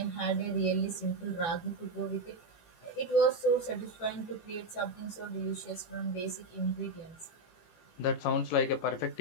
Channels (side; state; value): right; late; 18 ms